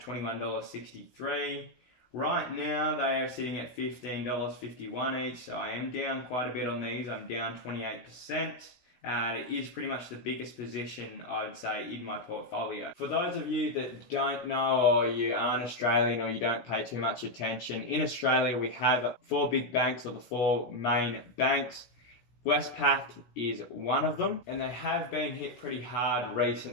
Right now, they are sitting at $15.51 each, so I am down quite a bit on these. I'm down 28%. It is pretty much the biggest position, I would say, in my portfolio. For those of you that don't know, or you aren't Australian, or you don't pay too much attention, in Australia we have 4 big banks, or the 4 main banks. Westpac is one of them, and they have been hit pretty hard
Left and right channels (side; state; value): right; late; 16 ms